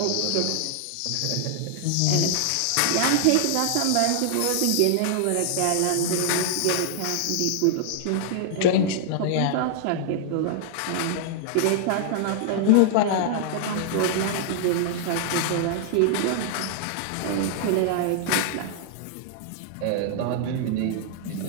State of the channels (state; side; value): different; both; correlation -0.01